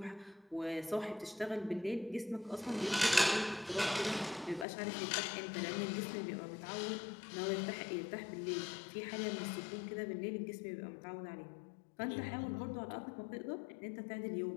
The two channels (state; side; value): drops out; right; at 4.7 s